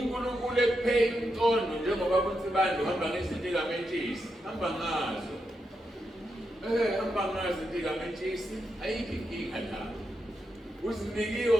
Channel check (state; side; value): normal; both; correlation 0.85